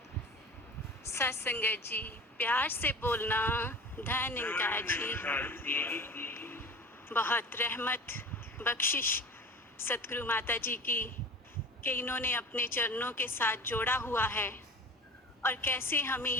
सत्संगत जी, प्यार से बोलना। धन इनका जी, बहुत रहमत बख्शिश सतगुरु माता जी की कि इन्होंने अपने चरणों के साथ जोड़ा हुआ है और कैसे हमें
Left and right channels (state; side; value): normal; both; correlation 0.37